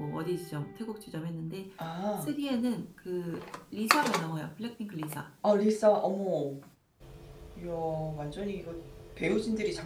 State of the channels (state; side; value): identical; both; correlation 1.00